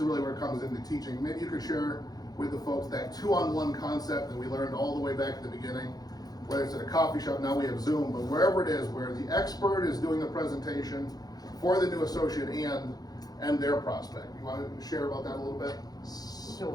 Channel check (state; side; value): late; right; 0.19 ms